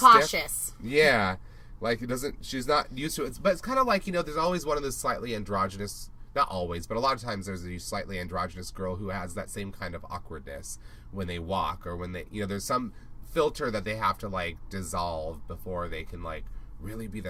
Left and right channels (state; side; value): identical; both; correlation 1.00